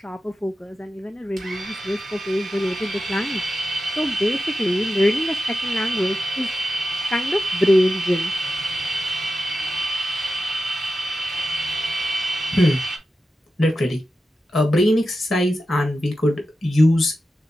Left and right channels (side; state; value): both; normal; correlation 0.92